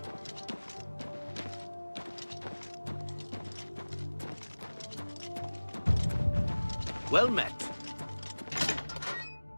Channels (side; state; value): both; inverted; correlation -1.00